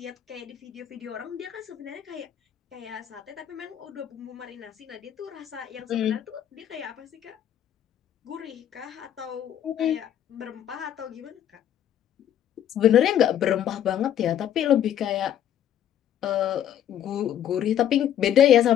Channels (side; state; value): right; quieter; 10.4 dB